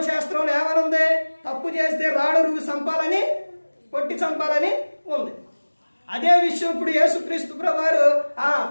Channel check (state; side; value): inverted; both; correlation -1.00